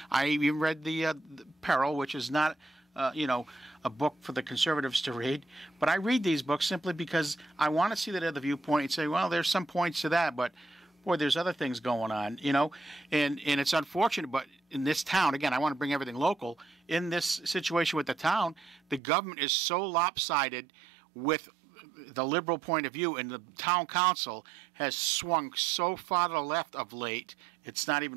I even read the Peril, which is not a book for the conservatives to read. But I read these books simply because I want to see that other viewpoint and say, well, there's some points to that, but boy, there's other things going on, and it's unfortunate. But in this town, again, I want to bring everything local. In this situation with the town, the government is so lopsided with the liberal point of view, and the town council has swung so far to the left of late, it's not even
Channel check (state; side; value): drops out; left; at 19.0 s